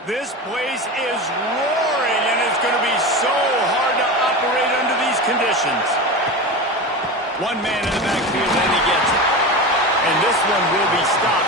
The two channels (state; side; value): normal; both; correlation 0.26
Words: This place is roaring, and it's going to be so hard to operate under these conditions. One man in the backfield, and he gets it. And this one will be